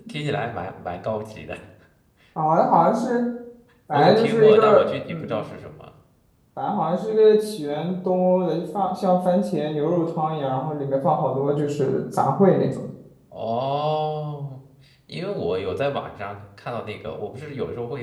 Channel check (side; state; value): both; identical; correlation 1.00